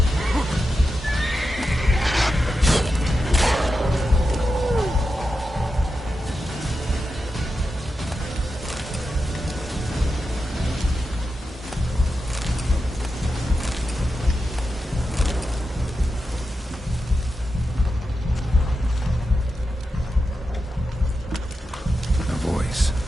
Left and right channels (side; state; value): both; normal; correlation 0.89